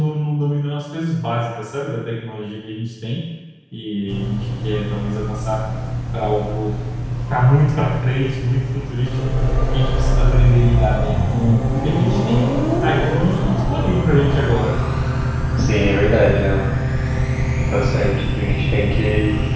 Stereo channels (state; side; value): identical; both; correlation 1.00